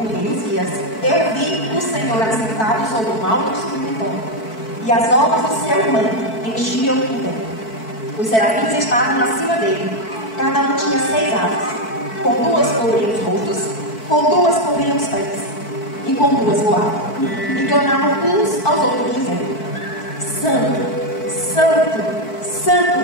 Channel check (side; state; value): right; late; 4.5 ms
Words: rei Uzias, eu vi o Senhor assentado sobre um alto sublime trono, e as obras do seu manto enchiam o templo. Os serafins estavam acima dele, cada um tinha 6 asas, com 2 cobriam os rostos, com 2 cobriam os pés, e com 2 voavam, e clamavam uns aos outros, dizendo: Santo, Santo,